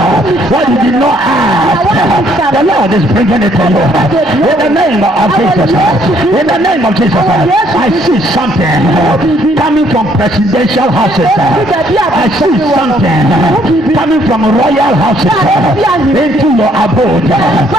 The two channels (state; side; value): normal; both; correlation 0.66